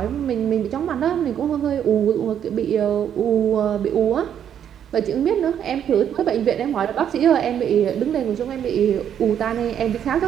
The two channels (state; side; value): quieter; left; 9.2 dB